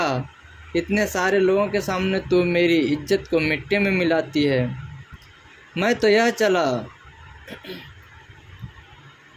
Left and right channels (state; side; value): identical; both; correlation 1.00